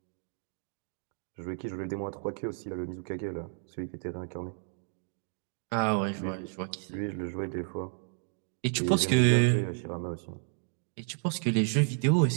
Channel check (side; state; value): left; silent; 57 dB below the other